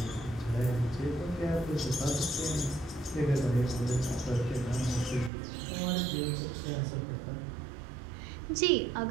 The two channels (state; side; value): drops out; left; at 5.3 s